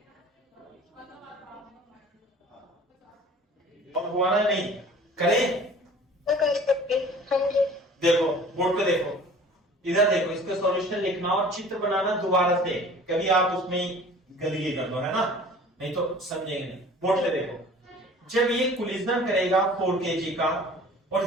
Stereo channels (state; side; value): normal; both; correlation 0.46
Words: और हुआ ना? नहीं करें? देखो बोर्ड पे देखो, इधर देखो, इसके सॉल्यूशन लिखना और चित्र बनाना दोबारा से। कभी आप उसमें गलती कर दो, है ना, नहीं तो समझेंगे नहीं। बोर्ड पे देखो, जब ये कोलिजन करेगा 4 kg का